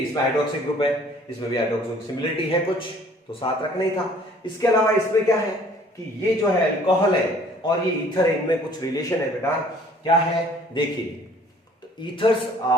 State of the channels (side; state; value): both; normal; correlation 0.56